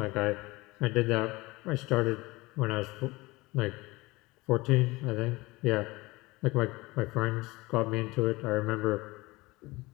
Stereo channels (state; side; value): quieter; right; 21.8 dB